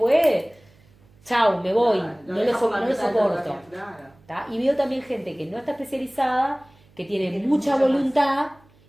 chau, me voy, no lo soporto. ¿Tá? Y veo también gente que no está especializada, que tiene mucha voluntad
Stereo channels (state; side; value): noise; right; hum, 30 dB below the sound